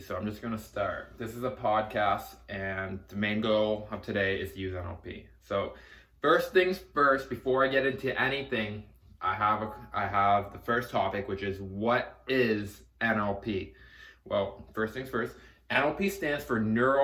so I'm just going to start. This is a podcast, and the main goal of today is to use NLP. So, first things first, before I get into anything, I have the first topic, which is what is NLP? Well, first things first, NLP stands for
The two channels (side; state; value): both; identical; correlation 1.00